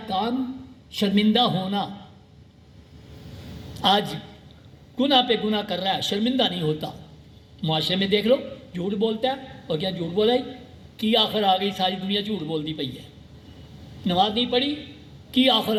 کام شرمندہ ہونا۔ آج گناہ پہ گناہ کر رہا ہے، شرمندہ نہیں ہوتا۔ معاشرے میں دیکھ لو، جھوٹ بولتا ہے اور کیا جھوٹ بولا کی آخر آ گئی، ساری دنیا جھوٹ بولتی پئی ہے۔ نماز نہیں پڑھی کی آخر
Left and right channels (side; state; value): both; identical; correlation 1.00